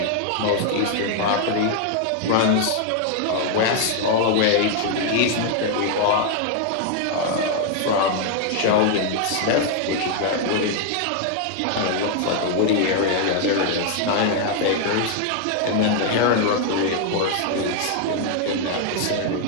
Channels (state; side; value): different; both; correlation 0.00